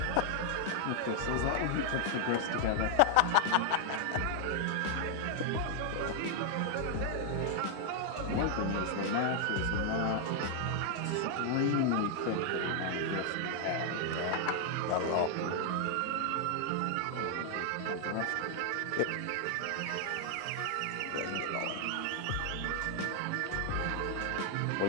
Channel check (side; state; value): both; different; correlation 0.00